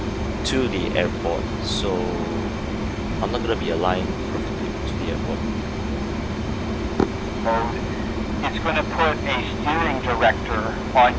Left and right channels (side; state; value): both; identical; correlation 1.00